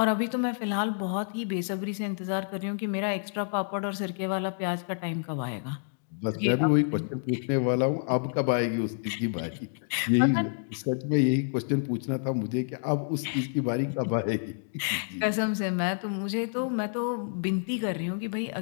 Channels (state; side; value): silent; right; digital silence